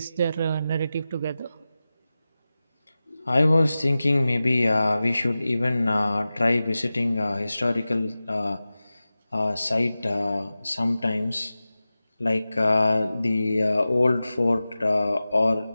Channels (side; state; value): both; inverted; correlation -0.95